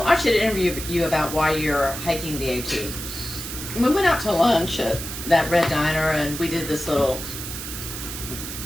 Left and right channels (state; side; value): noise; right; hiss, 8 dB below the sound